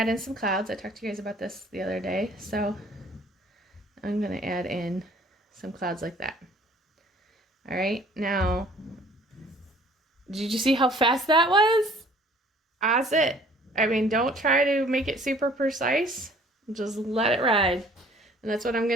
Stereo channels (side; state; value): both; normal; correlation 0.55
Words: in some clouds. I talked to you guys about this the other day, so I'm going to add in some clouds like that. All right, now, did you see how fast that was? That's it. I mean, don't try to make it super precise. Just let it ride. And that's what I'm